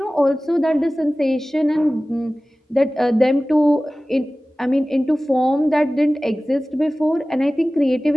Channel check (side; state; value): both; normal; correlation 0.97